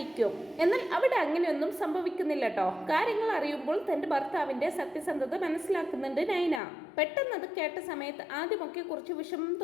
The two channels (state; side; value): drops out; right; at 6.6 s